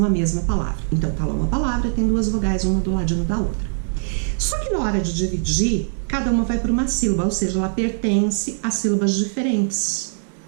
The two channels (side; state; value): left; silent; 65 dB below the other